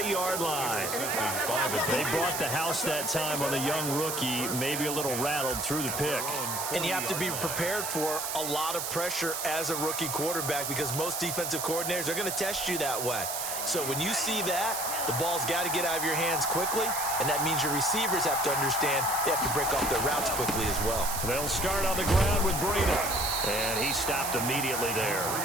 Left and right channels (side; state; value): right; noise; hiss, 3 dB below the sound